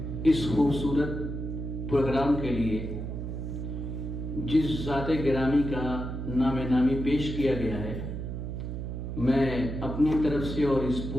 اس خوبصورت پروگرام کے لیے جس ذات گرامی کا نام نامی پیش کیا گیا ہے، میں اپنی طرف سے اور اس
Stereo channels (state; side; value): noise; right; hum, 5 dB below the sound